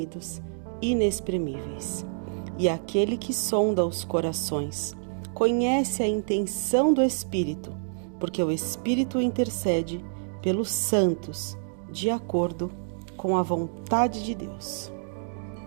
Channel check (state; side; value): silent; left; digital silence